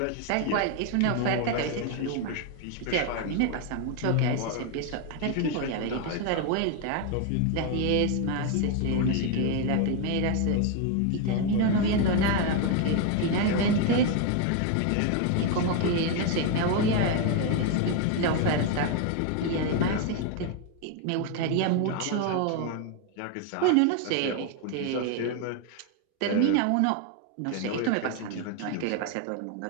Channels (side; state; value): both; different; correlation 0.01